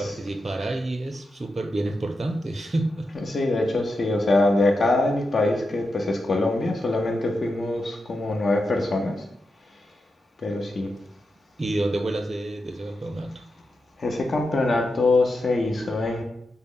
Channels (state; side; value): normal; both; correlation 0.88